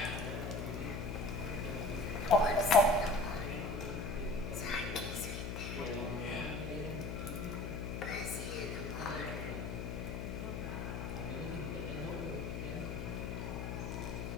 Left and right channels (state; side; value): noise; left; hum, 4 dB below the sound